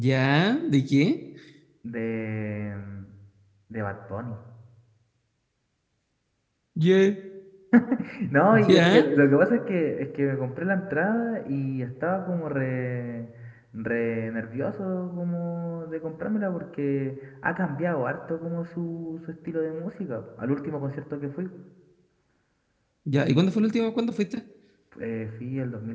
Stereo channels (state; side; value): identical; both; correlation 1.00